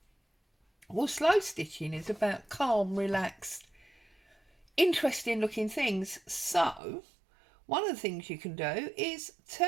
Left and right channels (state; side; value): drops out; left; at 6.8 s